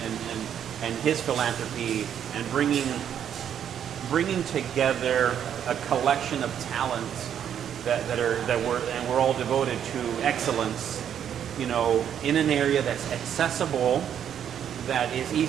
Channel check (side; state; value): left; quieter; 9.2 dB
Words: and his philanthropy and bringing together a collection of talents we're all devoted to excellence, in an area that's accessible, that is